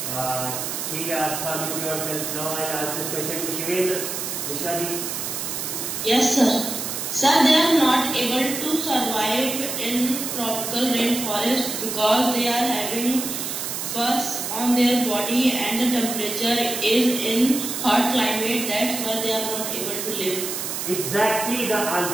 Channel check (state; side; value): noise; right; hiss, 4 dB below the sound